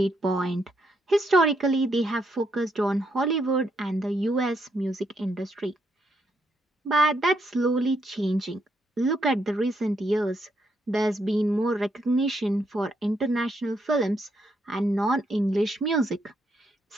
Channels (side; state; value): both; normal; correlation 0.77